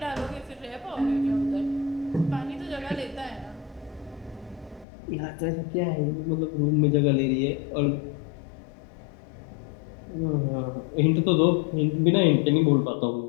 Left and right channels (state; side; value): drops out; right; at 4.9 s